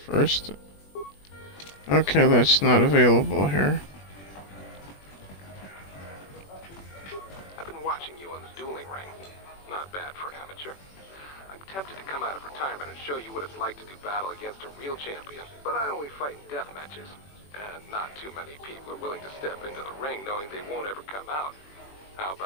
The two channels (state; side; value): late; right; 21 ms